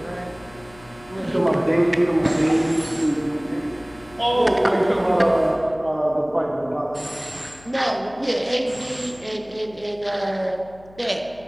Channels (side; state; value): left; noise; hum, 24 dB below the sound